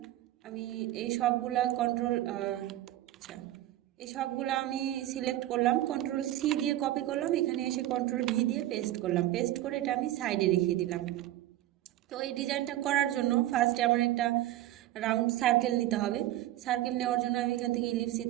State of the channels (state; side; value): quieter; left; 14.6 dB